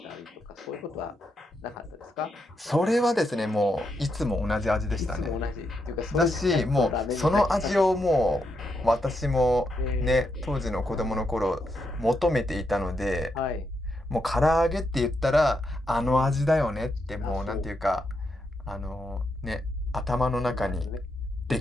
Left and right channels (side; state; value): both; normal; correlation 0.81